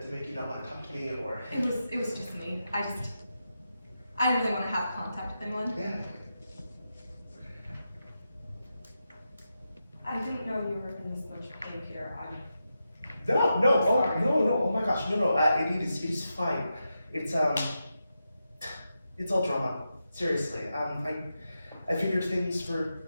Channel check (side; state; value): both; inverted; correlation -0.88